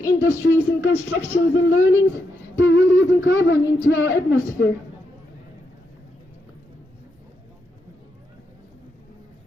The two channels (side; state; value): both; normal; correlation 0.82